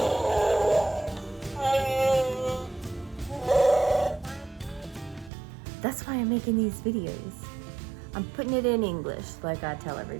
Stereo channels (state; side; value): drops out; left; at 5.3 s